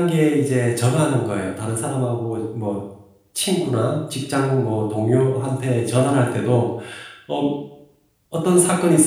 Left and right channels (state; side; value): identical; both; correlation 1.00